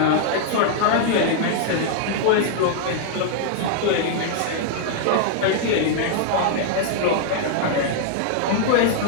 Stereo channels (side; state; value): both; different; correlation -0.01